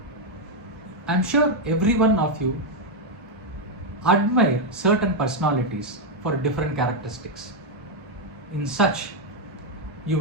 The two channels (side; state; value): both; normal; correlation 0.01